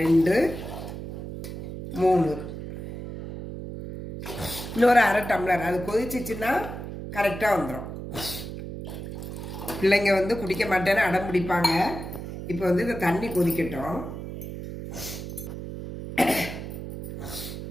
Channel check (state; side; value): noise; right; hum, 8 dB below the sound